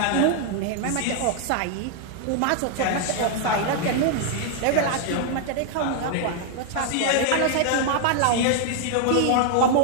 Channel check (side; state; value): both; different; correlation 0.00